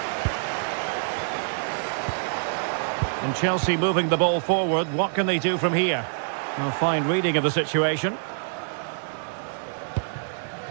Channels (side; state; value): left; silent; digital silence